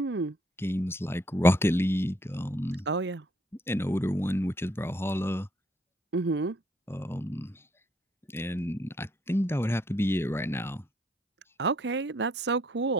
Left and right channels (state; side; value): normal; both; correlation 0.69